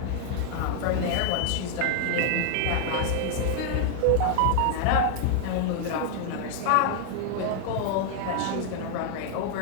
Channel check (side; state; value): both; different; correlation 0.00